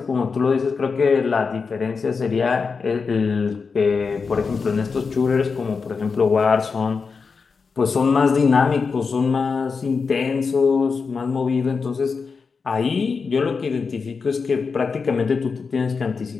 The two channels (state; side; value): quieter; right; 5.1 dB